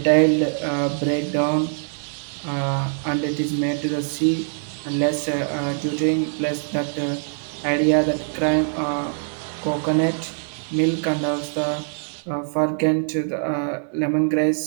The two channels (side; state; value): left; silent; digital silence